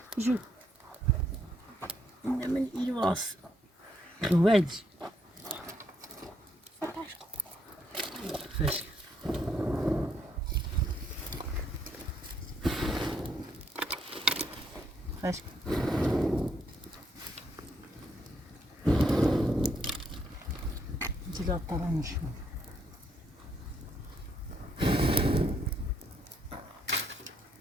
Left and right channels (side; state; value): both; normal; correlation 0.73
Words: شوف من إيواس وادي فش فش جلاب طبعا مش